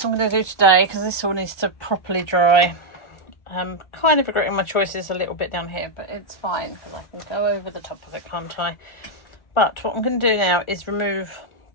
I'm going to do today because this all needs to properly dry. I'm kind of regretting my choices a little bit down here, but it's fine because I can go over the top of it, can't I? But what I'm going to do now is remove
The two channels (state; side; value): late; right; 1.4 ms